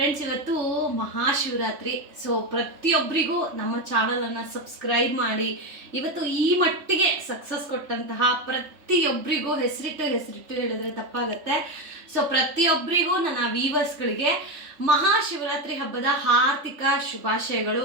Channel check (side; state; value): left; late; 3.4 ms